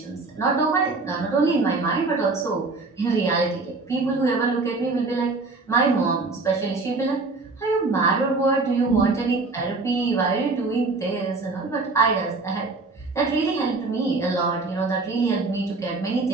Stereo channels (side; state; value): left; quieter; 3.7 dB